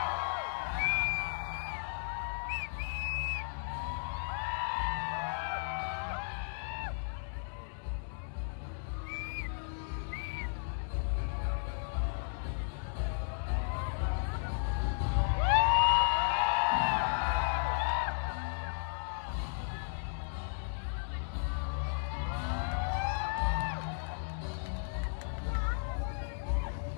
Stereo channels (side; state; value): right; silent; digital silence